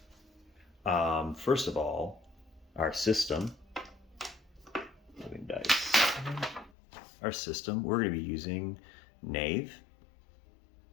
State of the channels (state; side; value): drops out; right; at 6.7 s